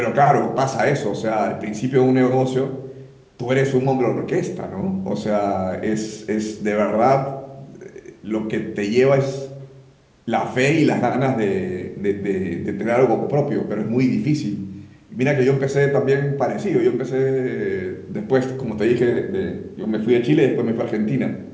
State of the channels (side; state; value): both; identical; correlation 1.00